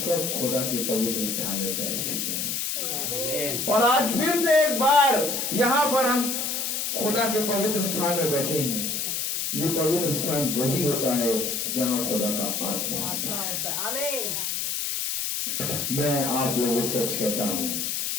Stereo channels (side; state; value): left; noise; hiss, 1 dB below the sound